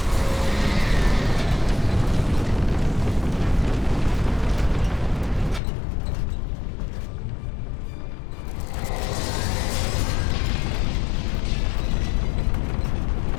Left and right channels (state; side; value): drops out; right; at 5.6 s